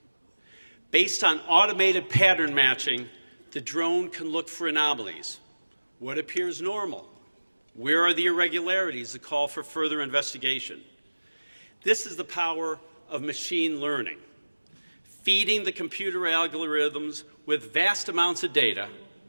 Based on automated pattern matching, the drone can look for anomalies. What appears normal? Where are the irregularities that call for further investigation? This is the power of machine learning, feeding the computer algorithms with vast amounts of data,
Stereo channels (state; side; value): inverted; both; correlation -1.00